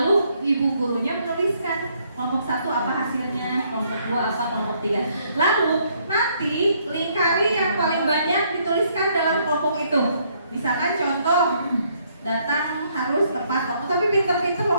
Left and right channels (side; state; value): both; inverted; correlation -0.69